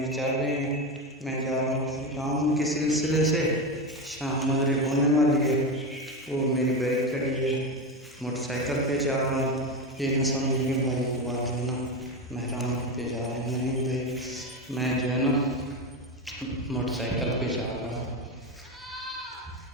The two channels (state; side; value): normal; both; correlation 0.17